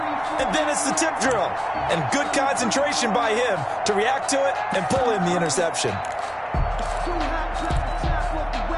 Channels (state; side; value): identical; both; correlation 1.00